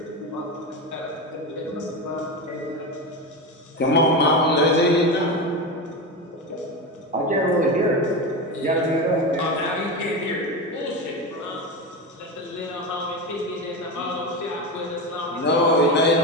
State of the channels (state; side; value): normal; both; correlation 0.19